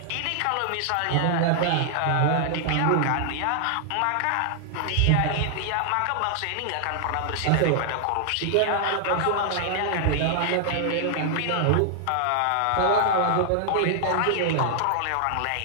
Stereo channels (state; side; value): different; both; correlation -0.01